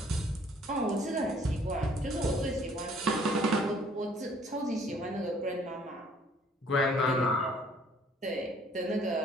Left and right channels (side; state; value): both; normal; correlation 0.59